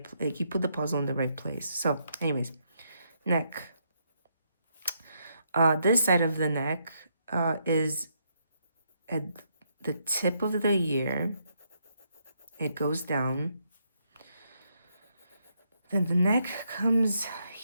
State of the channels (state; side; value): inverted; both; correlation -0.76